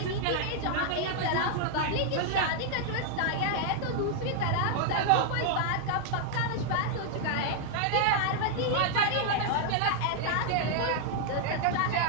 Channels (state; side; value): different; both; correlation 0.00